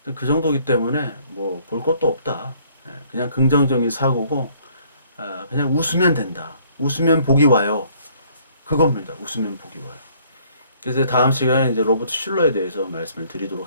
그 정도기 때문에 뭐 볼 것도 없다. 그냥 긍정적인 사고고 그냥 웃으면 된다. 웃으면 복이 와요. 그겁니다. 웃으면 복이 와요. 그래서 다음 시간에 이제 로버트 슐러에 대해서 말씀을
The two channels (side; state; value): both; inverted; correlation -0.61